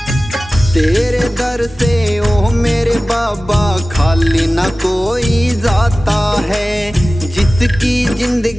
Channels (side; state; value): both; normal; correlation 0.97